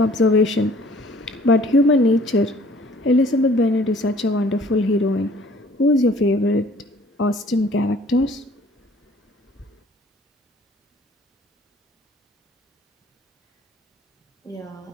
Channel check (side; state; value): both; normal; correlation 0.55